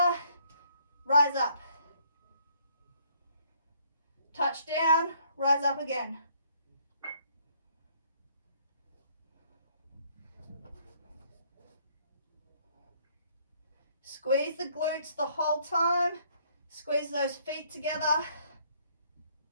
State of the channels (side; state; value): both; inverted; correlation -0.64